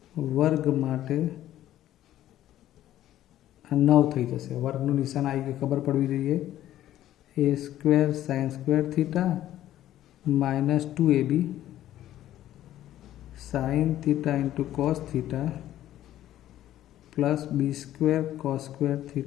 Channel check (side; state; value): right; quieter; 12.9 dB